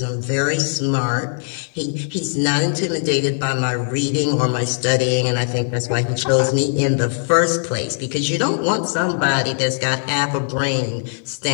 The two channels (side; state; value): right; silent; 66 dB below the other